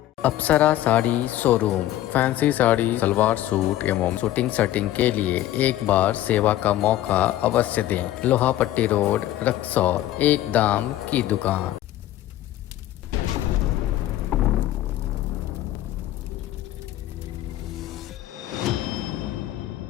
Apsara sari showroom. Fancy sari, salwar suit एवं शूटिंग सेटिंग के लिए एक बार सेवा का मौका अवश्य दें। लोहापट्टी रोड, रक्सौल। एक दाम की दुकान।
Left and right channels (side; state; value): right; quieter; 13.9 dB